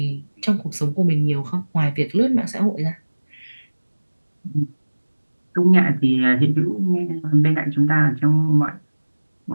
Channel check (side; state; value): both; inverted; correlation -1.00